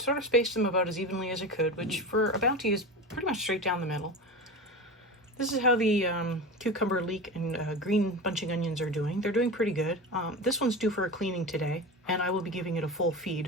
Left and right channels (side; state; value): both; normal; correlation 0.27